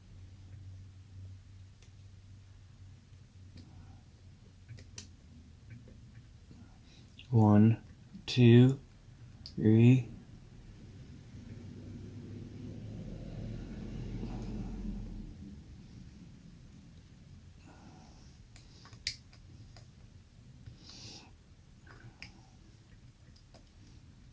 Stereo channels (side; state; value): both; identical; correlation 1.00